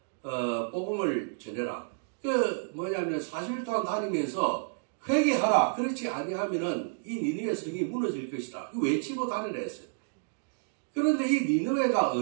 복음을 전해라. 그 뭐냐면 40일 동안 다니면서 회개하라. 그렇지 아니하면은 이 니느웨 성이 무너질 것이다. 그 외치고 다니라 했어요. 그런데 이 니느웨가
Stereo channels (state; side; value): silent; left; digital silence